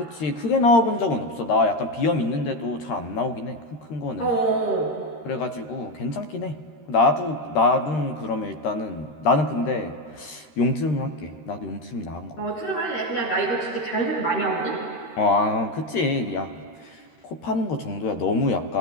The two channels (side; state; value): right; late; 13 ms